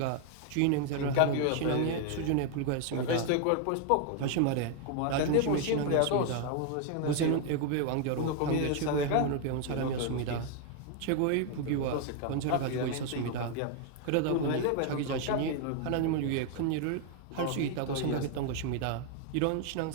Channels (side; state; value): both; different; correlation 0.00